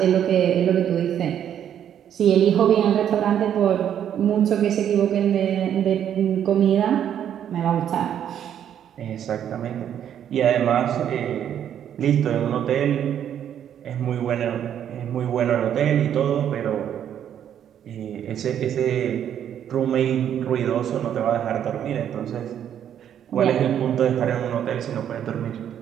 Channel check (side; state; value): left; quieter; 9.7 dB